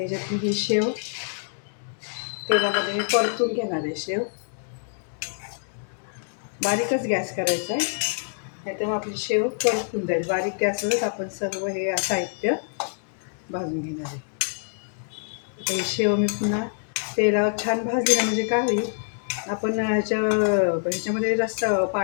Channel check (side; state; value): right; silent; digital silence